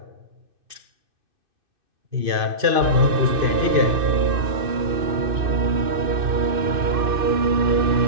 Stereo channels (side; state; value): left; late; 2.6 ms